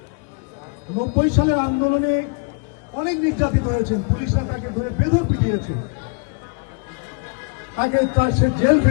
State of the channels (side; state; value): right; quieter; 34.1 dB